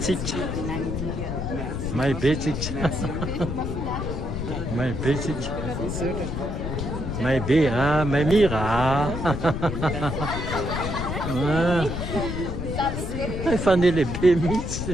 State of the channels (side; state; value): left; noise; rumble, 4 dB below the sound